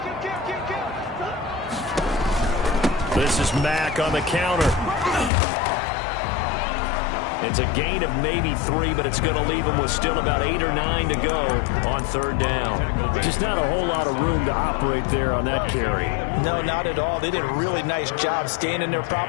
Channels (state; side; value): drops out; right; at 5.3 s